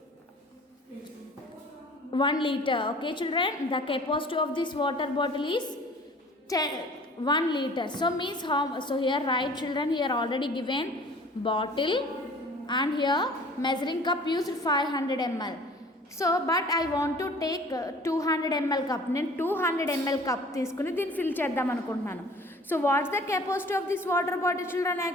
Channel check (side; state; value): both; normal; correlation 0.48